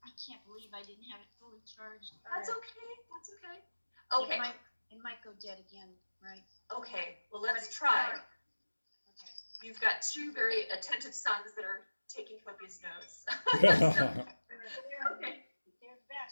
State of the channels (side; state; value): both; inverted; correlation -1.00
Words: can't believe I didn't have it fully charged. That's okay. That's okay. Okay. It might go dead again, right? Okay. Well, let's try. Okay. You've got two very attentive sons that are taking copious notes. Okay. They're the